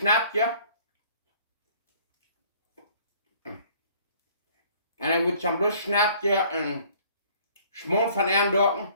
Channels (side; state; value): both; inverted; correlation -0.57